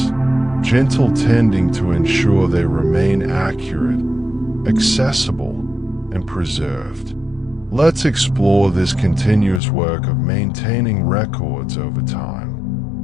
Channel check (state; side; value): drops out; right; at 9.6 s